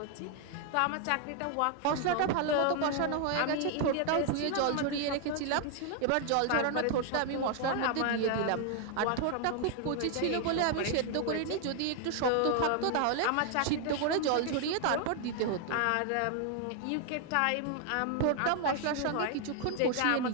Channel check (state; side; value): different; both; correlation 0.00